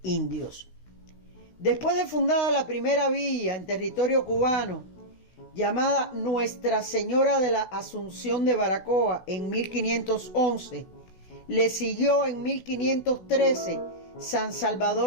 indios. Después de fundada la primera villa en territorio cubano, llamada Nuestra Señora de la Asunción de Baracoa en 1511, le siguió en 1513 San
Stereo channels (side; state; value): right; late; 16 ms